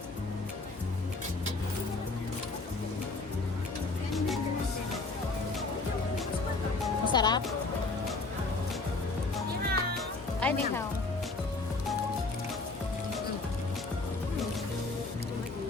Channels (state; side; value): quieter; right; 3.6 dB